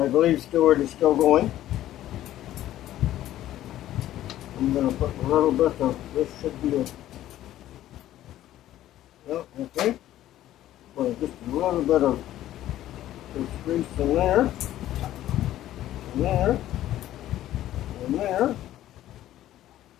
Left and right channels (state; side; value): quieter; right; 13.3 dB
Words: believe Stewart is still going. I'm going to put a little bit of, this should be a, no, okay. Put just a little bit of this grease in there, and there, and there.